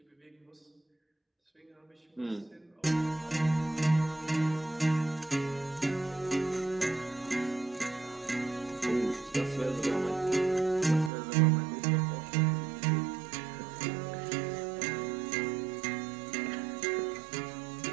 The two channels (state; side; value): drops out; left; at 11.1 s